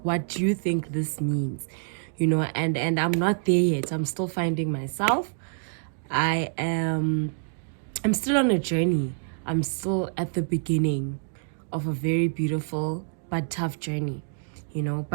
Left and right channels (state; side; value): silent; left; digital silence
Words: what you think this means, you know, and I'm not there yet. I'm still finding myself. I'm still on a journey. I'm still at the beginning of a very beautiful but tough journey, you know.